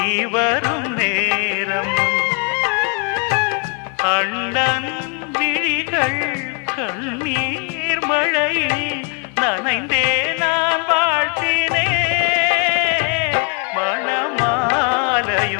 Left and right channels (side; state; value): right; quieter; 35.7 dB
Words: வரும் நேரம் அண்ணன் விழிகள் கண்ணீர் மழையில் நனைந்தே நான் வாழ்த்தினே